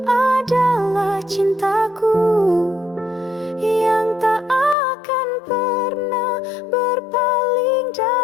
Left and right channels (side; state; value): right; drops out; at 4.8 s